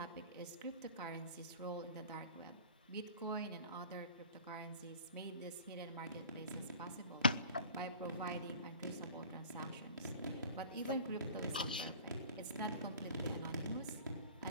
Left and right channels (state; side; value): inverted; both; correlation -0.44